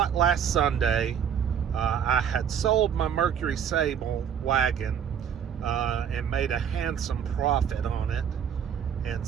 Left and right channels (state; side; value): quieter; left; 8.3 dB